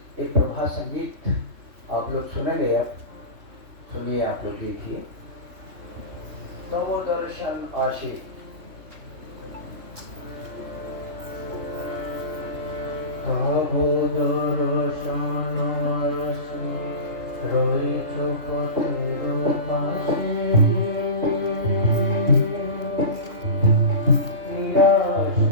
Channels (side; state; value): left; late; 3.2 ms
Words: एक प्रभात संगीत आप लोग सुनेंगे। अब सुनिए, आप लोग देखिए। नमो दर्शन आशी। नमो दर्शन आशी রয়েছো পথের পাশে, নিরাশ